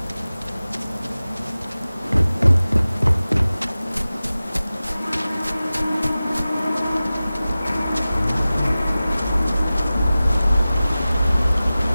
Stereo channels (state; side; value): inverted; both; correlation -0.96